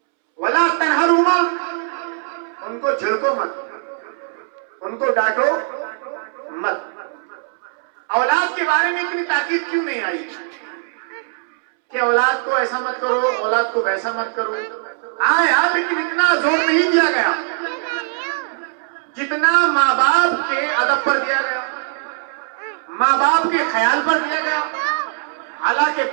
ولا تنہرہما، ان کو جھڑکو مت، ان کو ڈانٹو مت۔ اولاد کے بارے میں اتنی تاکید کیوں نہیں آئی کہ اولاد کو ایسا مت کرو، اولاد کو ویسا مت کرو؟ آیا لیکن اتنا زور نہیں دیا گیا جتنا ماں باپ کے ادب پر دیا گیا، ماں باپ کے خیال پر دیا گیا۔ حالانکہ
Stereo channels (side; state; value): left; silent; 66 dB below the other